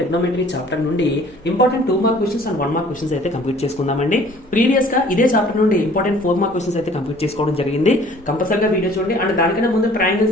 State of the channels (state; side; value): normal; both; correlation 0.53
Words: chapter నుండి important 2 mark questions and 1 mark questions అయితే కంప్లీట్ చేసుకుందామండి. ప్రీవియస్ గా ఇదే చాప్టర్ నుండి ఇంపార్టెంట్ 4 మార్క్ క్వశ్చన్స్ అయితే కంప్లీట్ చేసుకోవడం జరిగింది. కంపల్సరీగా వీడియో చూడండి. అండ్ దానికన్నా ముందు